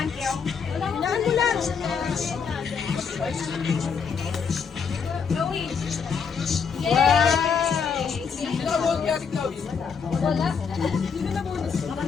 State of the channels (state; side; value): quieter; right; 6.1 dB